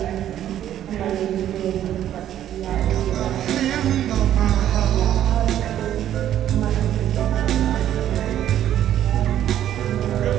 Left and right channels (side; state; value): left; quieter; 11.3 dB